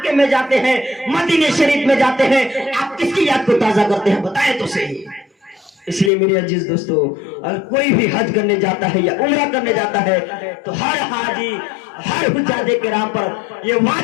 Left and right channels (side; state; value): right; drops out; at 6.1 s